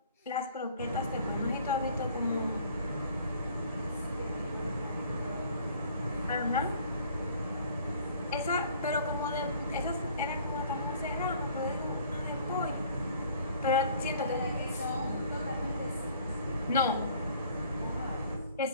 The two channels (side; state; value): both; inverted; correlation -0.54